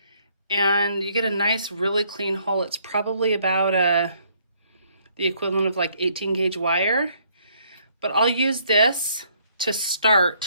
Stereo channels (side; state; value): both; inverted; correlation -0.67